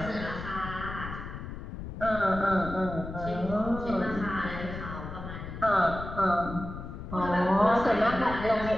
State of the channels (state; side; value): noise; left; rumble, 9 dB below the sound